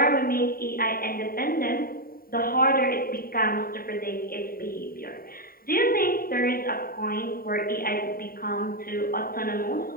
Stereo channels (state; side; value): late; right; 0.43 ms